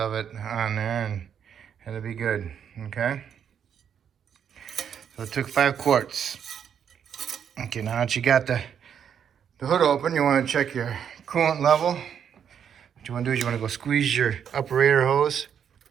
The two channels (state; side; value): quieter; left; 8.2 dB